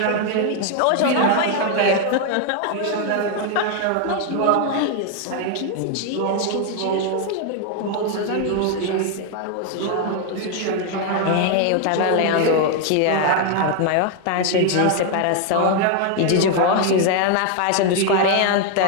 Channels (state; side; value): different; both; correlation 0.00